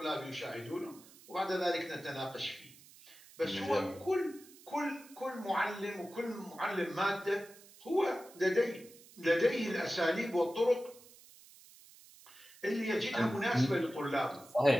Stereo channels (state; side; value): noise; right; hiss, 22 dB below the sound